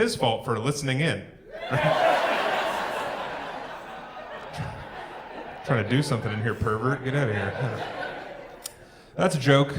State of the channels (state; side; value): identical; both; correlation 1.00